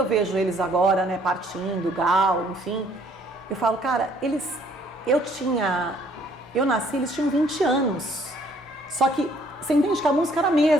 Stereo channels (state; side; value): normal; both; correlation 0.62